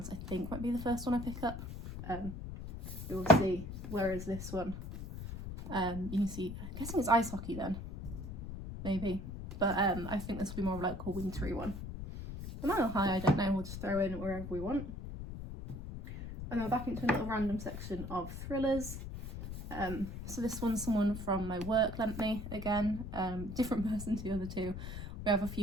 I think might be the first one I pick up. We will see. Whereas this one, you can see, I'm guessing it's ice hockey then, maybe. But I think this will be more of like a wintry one. The Mile High, I don't know, we'll just throw in wherever we want. And then we're back into a little random section of thrillers. So this one's someone from my work lent me again, different person to the other 2. We have a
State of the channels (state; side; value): noise; left; rumble, 8 dB below the sound